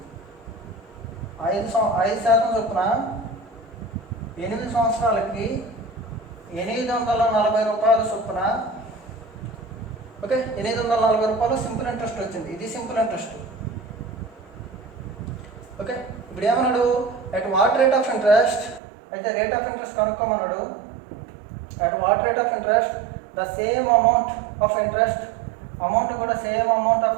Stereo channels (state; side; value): drops out; left; at 18.8 s